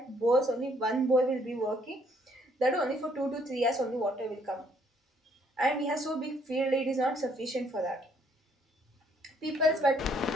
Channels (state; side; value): normal; both; correlation 0.66